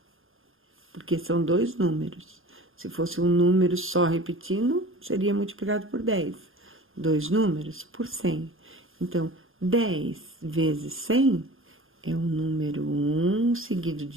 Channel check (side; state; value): left; late; 0.60 ms